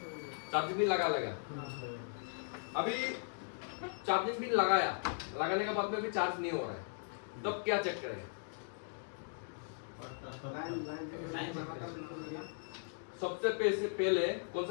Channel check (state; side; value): silent; right; digital silence